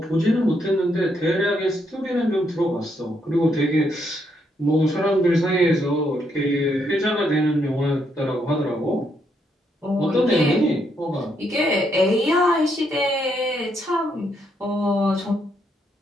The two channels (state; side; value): normal; both; correlation 0.76